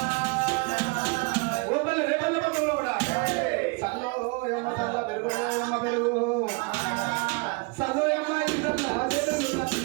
ఓపల్ల రేపల్ల పద్ధతిలో కూడా చల్లో ఏమో చల్ల పెరుగు ఏమ పెరుగు చల్లో ఏమ్మ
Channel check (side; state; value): left; quieter; 29.7 dB